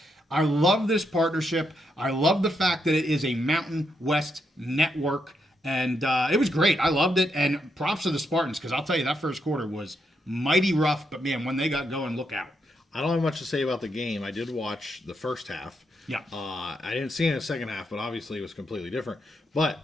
I love this partnership. I love the fact that it is a Mountain West network, and it was great. I loved it, and props to the Spartans, because I'll tell you, that first quarter was mighty rough, but man, when they got going, look out. I don't have much to say about the game. I did watch the first half. Yeah. I didn't see it in the second half, but obviously it was completely different. But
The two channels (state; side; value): normal; both; correlation 0.80